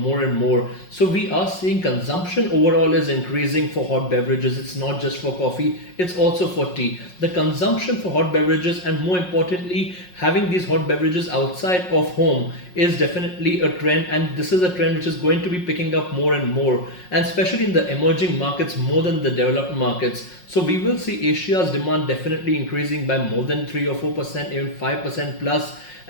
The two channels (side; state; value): right; late; 5.5 ms